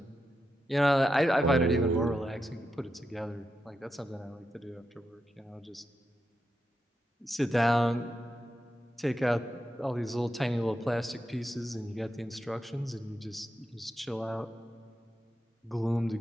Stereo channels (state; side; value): normal; both; correlation 0.86